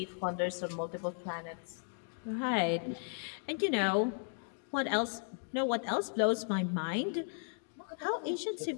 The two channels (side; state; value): right; silent; 54 dB below the other